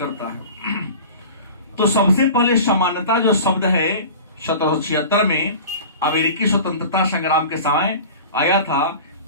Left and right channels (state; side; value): inverted; both; correlation -0.37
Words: है। तो सबसे पहले समानता जो शब्द है 1776 में अमेरिकी स्वतंत्रता संग्राम के समय आया था,